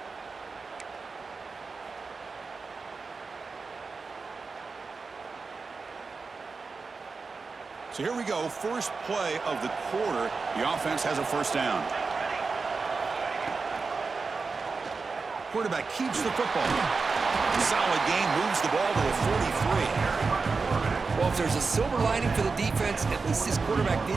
So here we go, first play of the quarter. The offense has a first down. Quarterback keeps the football. Solid game, moves the ball to a 43. Well, if there's a silver lining for the defense, at least this quarterback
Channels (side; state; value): left; quieter; 4.4 dB